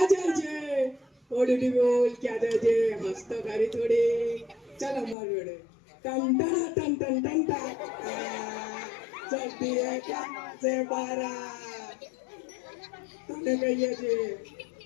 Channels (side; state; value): right; drops out; at 5.2 s